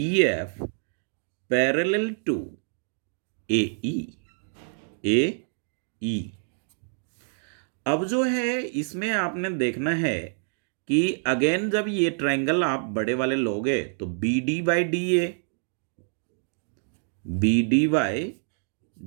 एफ पैरेलल टू ए ई। अब जो है इसमें आपने देखना है कि अगेन जब ये ट्रायंगल आप बड़े वाले लोगे तो B D by D A, B D by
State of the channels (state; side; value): silent; left; 60 dB below the other